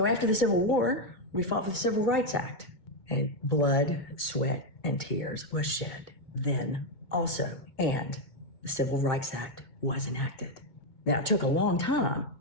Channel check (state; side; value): late; right; 2.2 ms